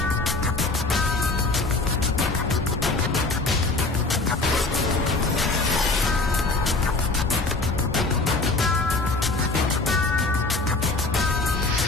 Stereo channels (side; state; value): right; quieter; 3.4 dB